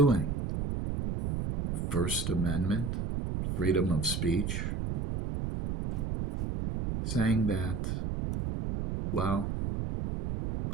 First Amendment, freedom of speech, saying that, well,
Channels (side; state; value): right; noise; rumble, 2 dB below the sound